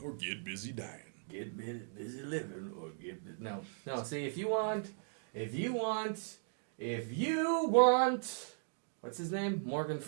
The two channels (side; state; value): left; silent; digital silence